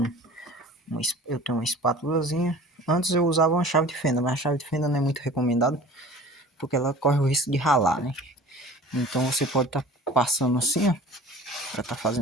eu tenho uma espátulazinha. Antes eu usava uma chave de fenda, mas a chave de fenda não é muito recomendada porque ela corre o risco de ralar, né? Então você pode estar passando assim, ó, para estar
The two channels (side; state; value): both; normal; correlation 0.42